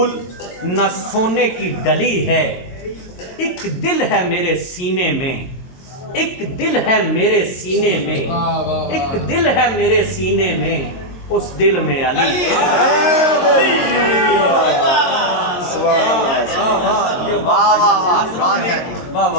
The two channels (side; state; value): right; late; 22 ms